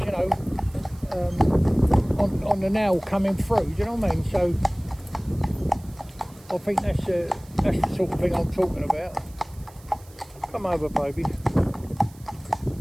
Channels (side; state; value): right; noise; hiss, 25 dB below the sound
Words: on the nail coming through, do you know what I mean? So I think that's the sort of thing I'm talking about. Come over, baby.